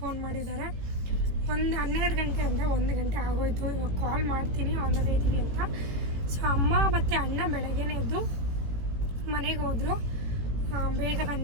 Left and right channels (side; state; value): left; late; 18 ms